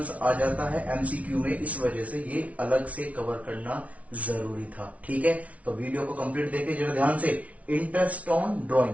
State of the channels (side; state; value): left; late; 0.066 ms